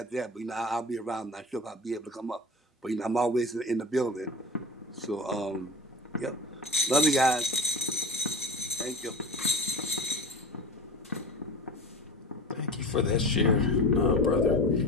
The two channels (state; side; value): normal; both; correlation 0.31